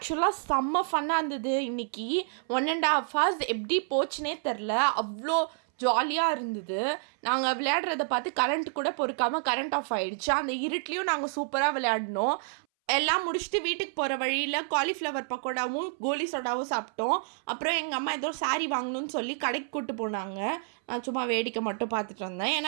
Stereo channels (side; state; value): left; silent; 59 dB below the other